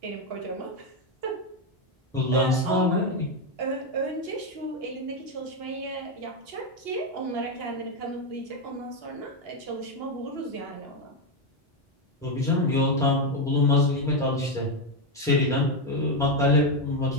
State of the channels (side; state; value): both; normal; correlation 0.06